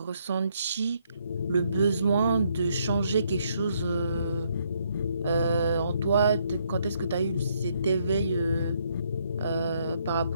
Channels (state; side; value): inverted; both; correlation -0.72